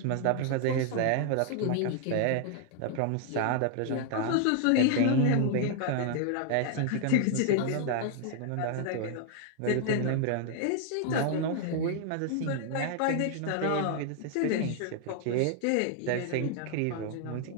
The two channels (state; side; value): different; both; correlation 0.00